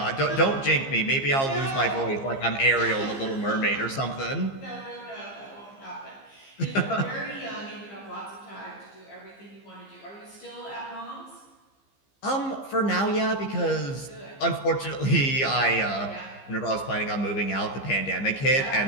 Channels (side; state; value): right; late; 15 ms